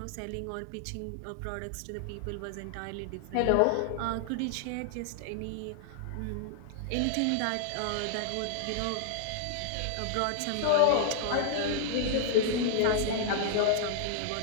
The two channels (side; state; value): both; different; correlation -0.01